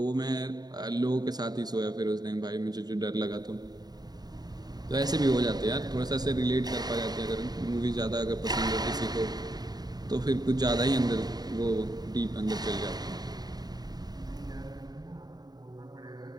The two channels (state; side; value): late; left; 0.19 ms